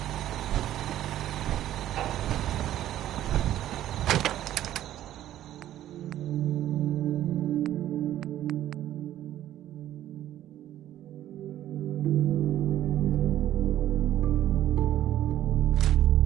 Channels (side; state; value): left; quieter; 12.6 dB